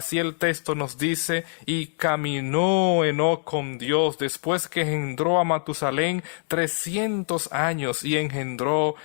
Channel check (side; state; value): right; silent; 62 dB below the other